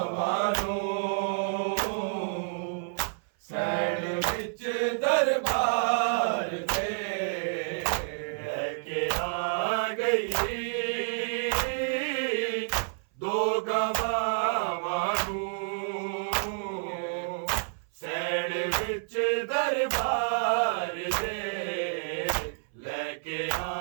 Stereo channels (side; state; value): left; silent; 58 dB below the other